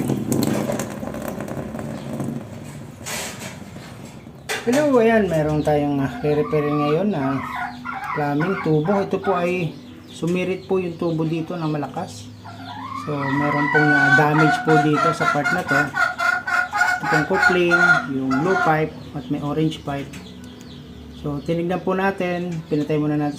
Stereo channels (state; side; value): identical; both; correlation 1.00